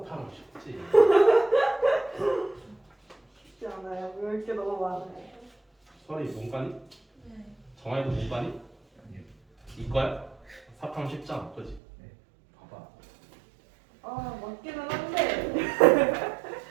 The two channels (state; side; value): drops out; left; at 11.8 s